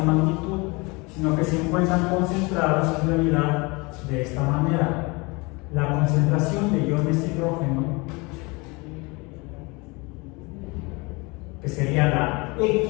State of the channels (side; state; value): right; quieter; 26.7 dB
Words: magnitud, sino que se encuentran concentrados en realidad de esta manera. La concentración de iones hidrógeno, que sería la